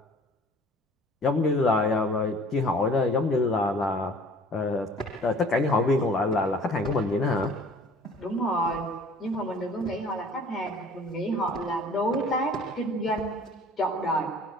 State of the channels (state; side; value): normal; both; correlation 0.50